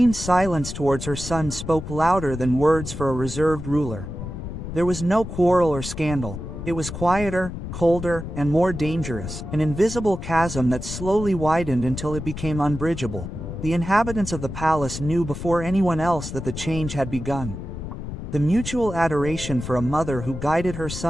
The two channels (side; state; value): left; noise; rumble, 8 dB below the sound